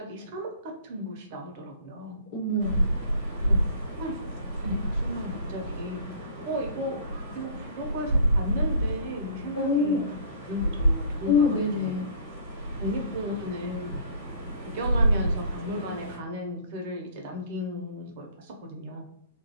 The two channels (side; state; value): both; inverted; correlation -0.50